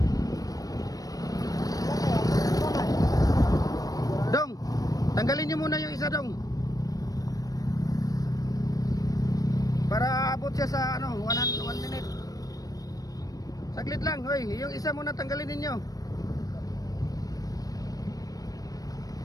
Dong, tanggalin nyo muna yung isa, Dong. Para abot siya sa 1 minute. Saglit lang, hoy. Yung isa muna tanggalin ninyo.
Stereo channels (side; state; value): right; late; 0.18 ms